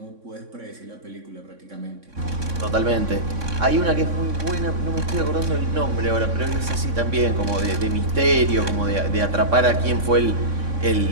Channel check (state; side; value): late; left; 3.6 ms